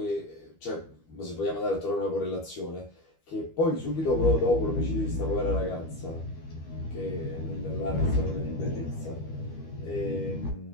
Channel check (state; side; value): late; right; 12 ms